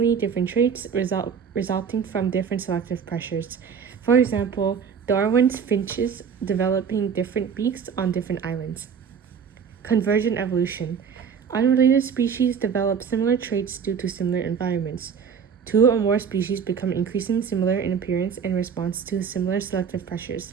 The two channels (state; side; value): quieter; left; 6.8 dB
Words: different traits resulting from different selective pressures. For example, Darwin's finches developing different beaks on different islands. Convergent evolution. Unrelated species develop similar traits due to similar environments. 2 or more species become increasingly similar in appearance in response to similar selective pressures.